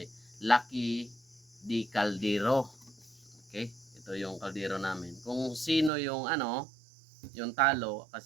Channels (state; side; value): drops out; left; at 5.9 s